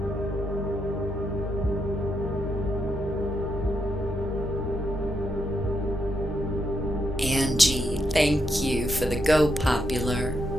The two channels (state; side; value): normal; both; correlation 0.81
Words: Angie, thank you for the Go Popular.